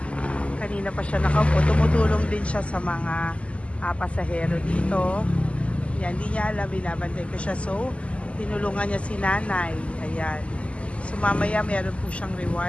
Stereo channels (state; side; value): late; right; 0.060 ms